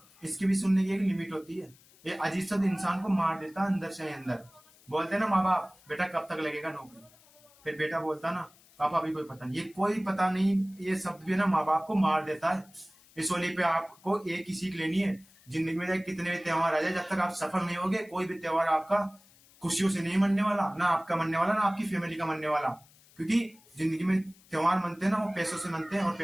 इसकी भी सुनने की एक लिमिट होती है। ये अजीब शब्द इंसान को मार देता है अंदर से अंदर। बोलते हैं ना माँ बाप, बेटा कब तक लगेगा नौकरी? फिर बेटा बोलता ना, पापा अभी कोई पता नहीं। ये कोई पता नहीं, ये शब्द भी ना माँ बाप को मार देता है। इस होली पे आपको एक ही सीख लेनी है, जिंदगी में चाहे कितने भी त्योहार आ जाए, जब तक आप सफल नहीं होगे कोई भी त्योहार आपका खुशियों से नहीं मनने वाला, ना आपका मनने वाला, ना आपकी फैमिली का मनने वाला। क्योंकि जिंदगी में त्योहार मनते हैं ना, वो पैसों से मनते हैं, और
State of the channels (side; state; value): left; noise; hiss, 27 dB below the sound